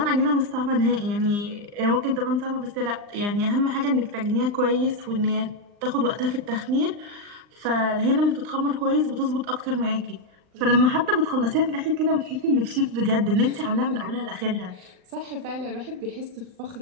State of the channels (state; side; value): late; left; 39 ms